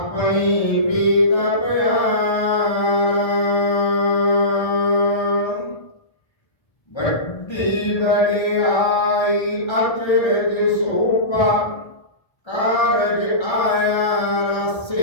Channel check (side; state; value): right; late; 1.3 ms